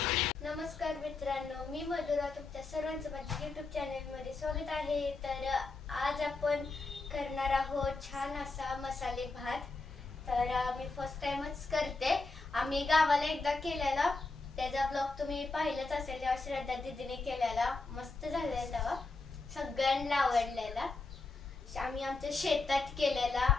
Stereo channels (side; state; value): right; quieter; 3.7 dB